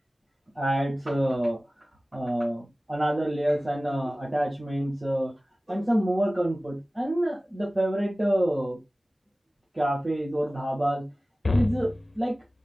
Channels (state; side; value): normal; both; correlation 0.97